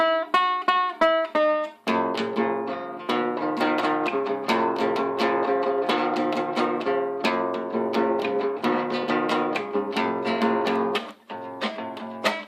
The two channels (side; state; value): both; identical; correlation 1.00